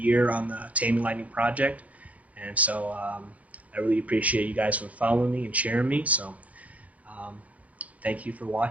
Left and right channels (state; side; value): late; left; 0.068 ms